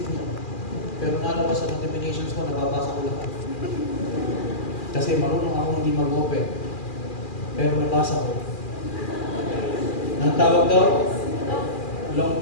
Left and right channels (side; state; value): right; late; 2.4 ms